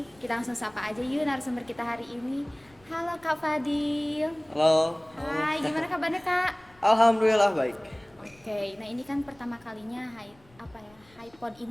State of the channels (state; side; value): noise; left; rumble, 29 dB below the sound